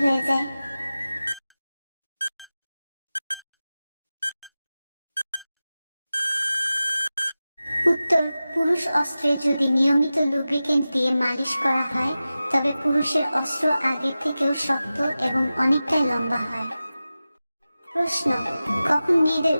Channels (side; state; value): both; inverted; correlation -0.95